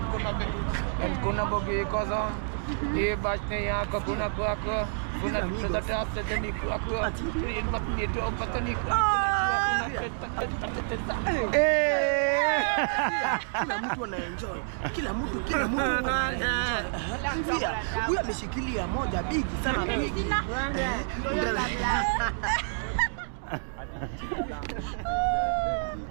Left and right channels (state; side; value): silent; left; digital silence